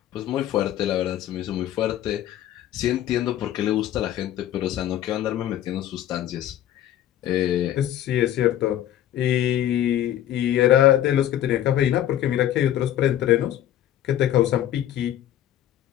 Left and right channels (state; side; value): quieter; right; 12.0 dB